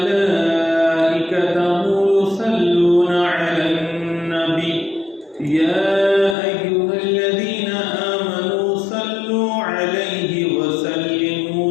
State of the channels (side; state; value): right; drops out; at 6.4 s